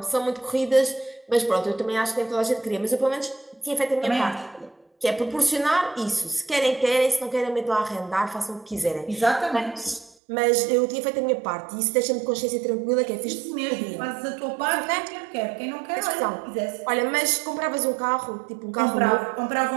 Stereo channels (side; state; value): left; drops out; at 10.2 s